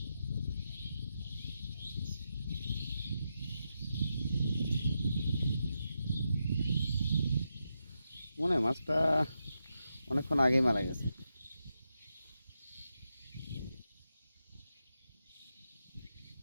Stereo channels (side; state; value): both; inverted; correlation -0.87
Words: মনে হয় মাছটা অনেকক্ষণ আগেই মারা গেছে।